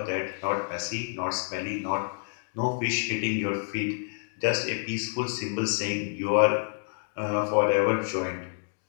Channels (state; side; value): silent; right; digital silence